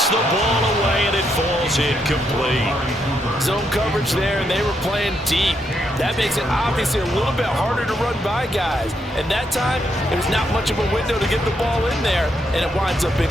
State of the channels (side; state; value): both; normal; correlation 0.78